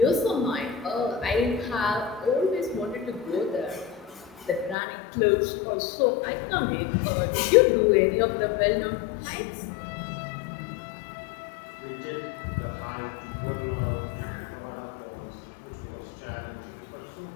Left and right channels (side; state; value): right; drops out; at 4.8 s